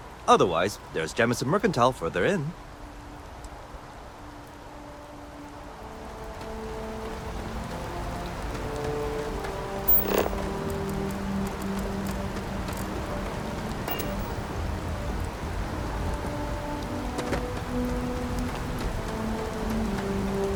Otherwise, there's Jemison Mercantile further in.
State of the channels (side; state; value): both; identical; correlation 1.00